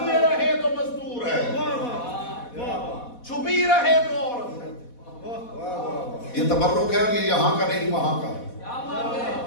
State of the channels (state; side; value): late; right; 4.1 ms